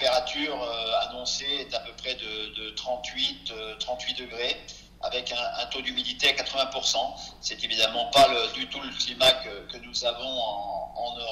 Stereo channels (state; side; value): identical; both; correlation 1.00